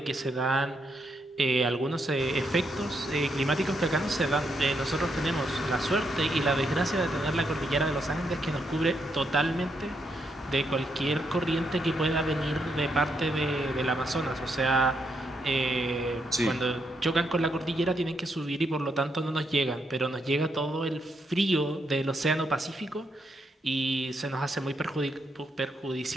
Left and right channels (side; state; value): both; normal; correlation 0.78